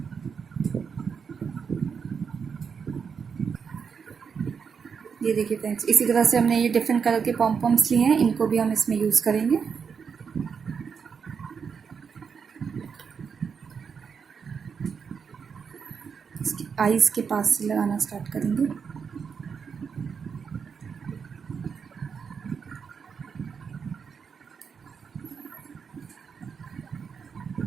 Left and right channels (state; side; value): quieter; left; 6.2 dB